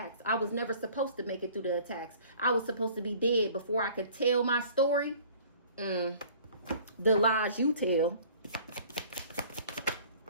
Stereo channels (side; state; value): both; inverted; correlation -0.51